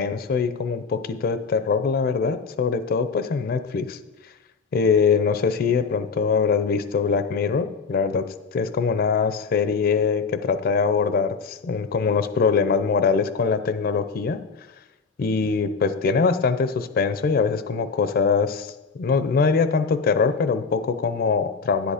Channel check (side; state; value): right; quieter; 5.0 dB